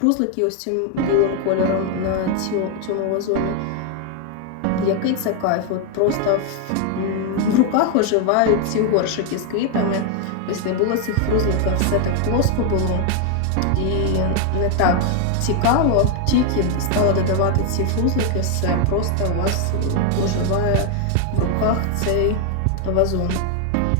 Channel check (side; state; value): both; different; correlation 0.01